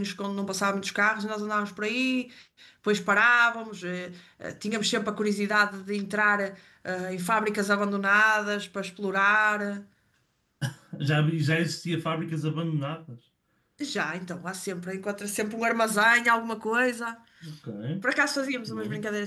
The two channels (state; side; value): identical; both; correlation 1.00